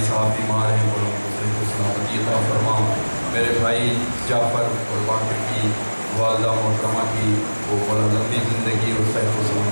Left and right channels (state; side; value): inverted; both; correlation -1.00